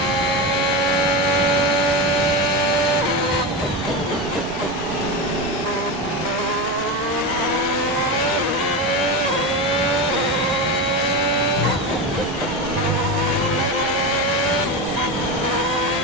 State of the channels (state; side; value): normal; both; correlation 0.20